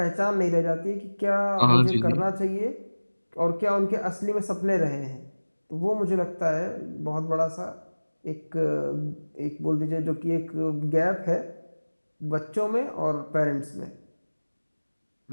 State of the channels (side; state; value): both; inverted; correlation -1.00